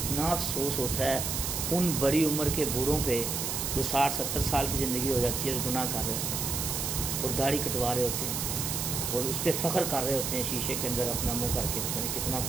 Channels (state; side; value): noise; right; hiss, 1 dB below the sound